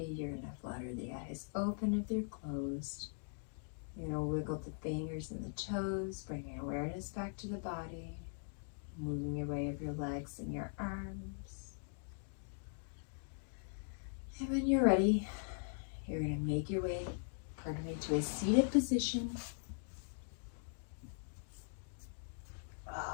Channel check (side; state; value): right; silent; digital silence